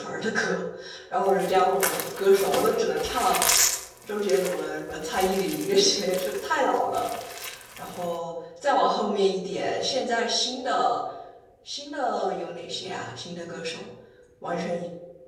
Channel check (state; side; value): identical; both; correlation 1.00